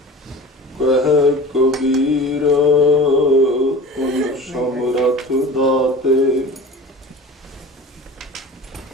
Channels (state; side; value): normal; both; correlation 0.38